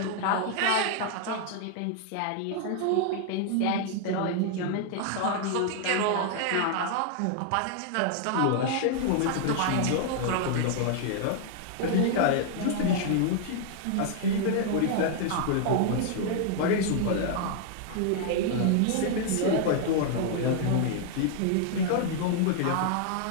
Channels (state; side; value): different; both; correlation 0.00